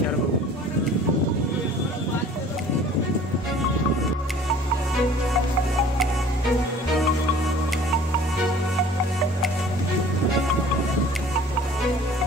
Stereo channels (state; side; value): normal; both; correlation 0.49